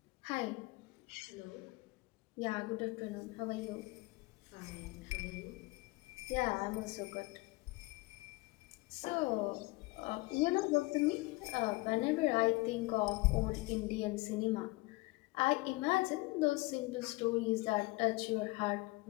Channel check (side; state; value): right; quieter; 23.1 dB